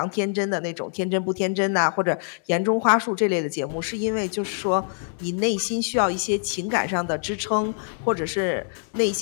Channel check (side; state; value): right; silent; 62 dB below the other